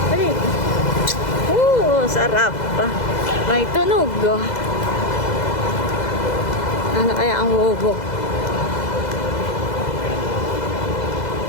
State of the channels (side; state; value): right; late; 2.0 ms